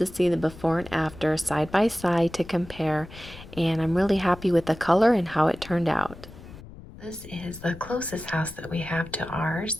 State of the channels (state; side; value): noise; left; rumble, 17 dB below the sound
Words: see the before and after side by side to compare, and I'm really happy with the color and how it turned out. This is the closest house that we have to ours